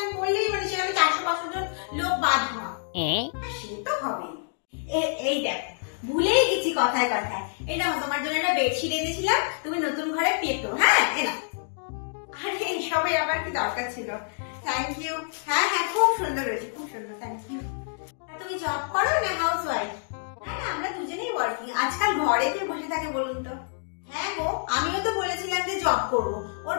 করলেই মানে সেখানে 400-500 জন লোক বাদ হয়, সে তো হবেই। এই দেখ ভুলেই গেছি কথায় কথায়, এই না তোমার জন্য একটা বেডশিট এনেছিলাম, তুমি নতুন ঘরে পেতো। হ্যাঁ এনা, আরে এইসবের আবার কি দরকার ছিল? Thank you. হ্যাঁ হ্যাঁ খুব সুন্দর হয়েছে, খুব সুন্দর, থ্যাংক ইউ। তুমি জব করো না হাউস ওয়াইফ? না না আমরা দুজনেই ওয়ার্কিং। আজকাল ঘরে কে বসে থাকে বলুন তো? হ্যাঁ গো আমিও তো বলেছিলাম যে জব করবো, ওর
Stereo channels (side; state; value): right; silent; digital silence